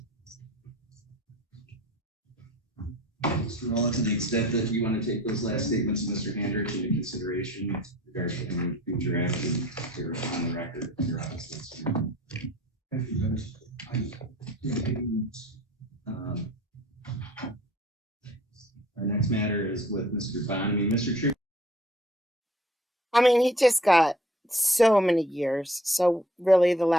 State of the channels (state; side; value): normal; both; correlation 0.51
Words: Mr. Rolla, to the extent that you want to take those last statements of Mr. Hendrich into consideration with regards to any future action, you're on the record in your office. Thank you, Judge. Our next matter is with Mr. Bonamy. Mr. True. I mean, he just got so many years. So really the